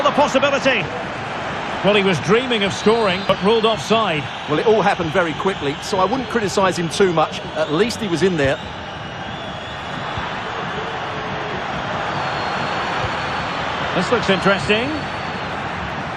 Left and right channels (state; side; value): identical; both; correlation 1.00